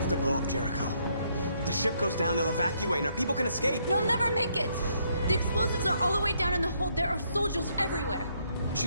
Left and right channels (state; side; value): inverted; both; correlation -0.72